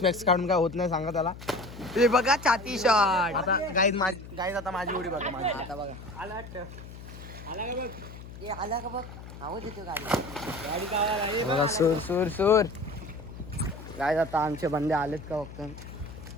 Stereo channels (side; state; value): left; noise; hum, 14 dB below the sound